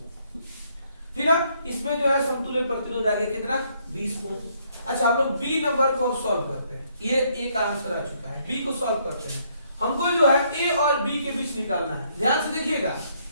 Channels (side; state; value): both; inverted; correlation -0.69